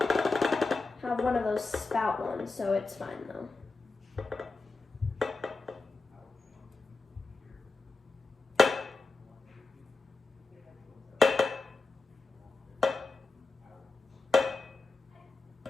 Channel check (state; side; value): quieter; right; 3.8 dB